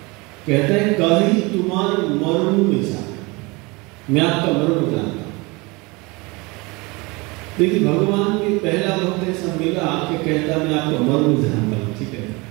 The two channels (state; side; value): quieter; left; 25.7 dB